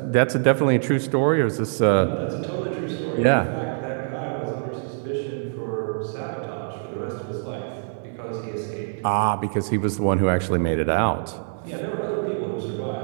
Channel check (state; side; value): silent; left; digital silence